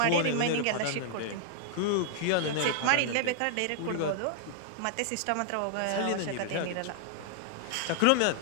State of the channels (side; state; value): both; different; correlation -0.01